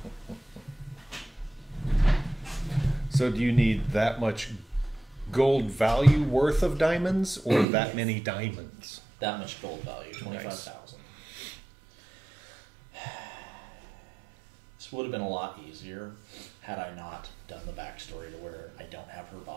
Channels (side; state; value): left; drops out; at 7.7 s